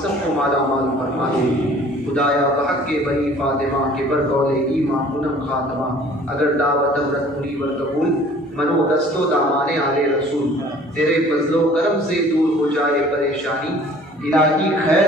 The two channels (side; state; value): both; normal; correlation 0.51